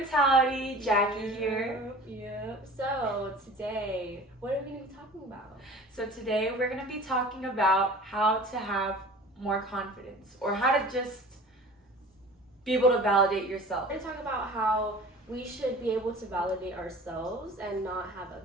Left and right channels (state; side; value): normal; both; correlation 0.42